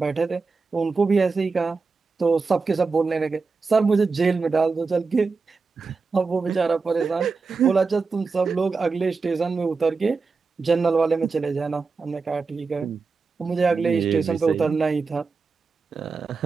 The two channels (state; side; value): quieter; left; 4.5 dB